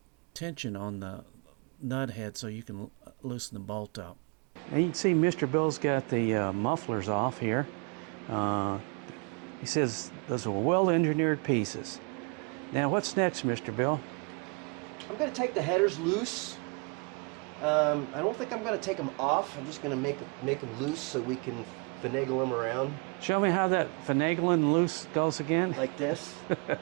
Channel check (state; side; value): quieter; left; 34.1 dB